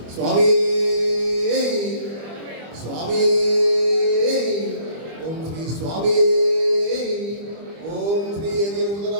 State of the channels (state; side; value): late; left; 25 ms